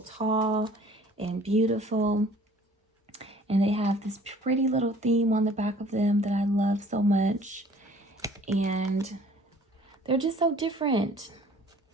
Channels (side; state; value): both; normal; correlation 0.53